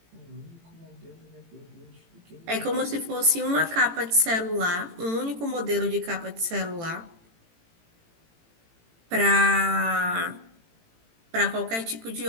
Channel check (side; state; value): left; late; 18 ms